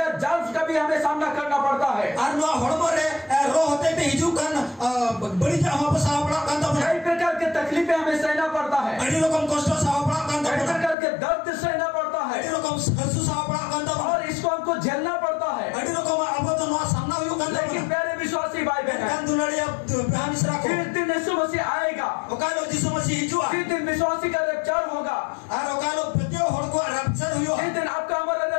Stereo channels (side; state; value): right; drops out; at 11.0 s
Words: जाल का भी हमें सामना करना पड़ता है। और नौ hormo rea रो होते ते हिजू kan बड़ी जहाँ वहाँ पे साव पड़ा कांदा बना, कई प्रकार के तकलीफें हमें सहना पड़ता है, अड़ी रकम कष्ट साव पड़ा कांदा कई बना, प्रकार के दर्द सहना पड़ता है अड़ी रकम हसु साव पड़ा कांदा बना, और इसको हमको झेलना पड़ता है। अड़ी रकम अब तो नौ सामना हुयो कांदा लेकिन बना, प्यारे विश्वासी भाई बहन, kan दुलारी अब बेहानिस रखो, जिस दिन यीशु मसीह आएगा, ओकालो जिसु मसीह हिजू आ, जिस दिन विश्वासी का रैप्चर होगा, और ओकालो प्रत्येक हड़ को रैप्चर हुयो, जिस दिन आपका हमारा